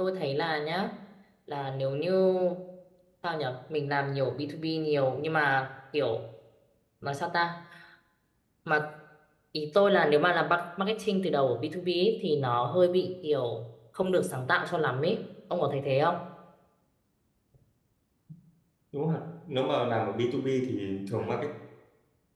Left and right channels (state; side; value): identical; both; correlation 1.00